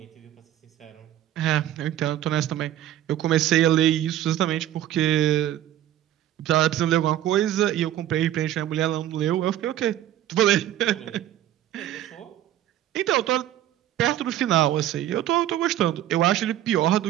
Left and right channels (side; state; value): left; quieter; 12.5 dB